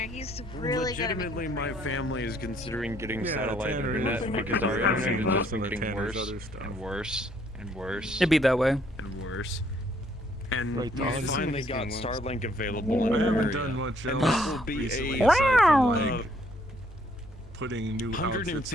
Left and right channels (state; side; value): normal; both; correlation 0.66